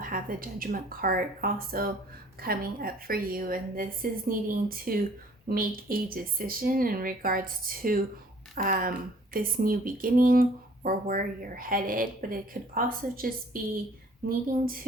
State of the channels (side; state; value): both; normal; correlation 0.55